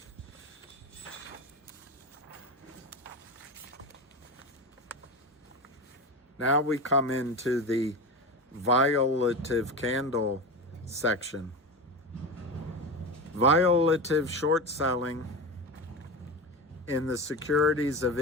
Now we come into the violative candle section. Violative short selling in the securities of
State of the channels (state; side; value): normal; both; correlation 0.23